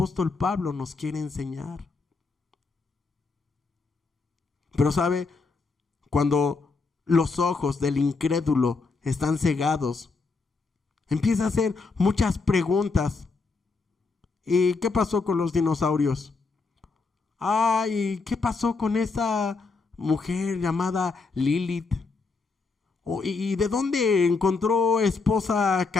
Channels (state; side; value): quieter; right; 4.2 dB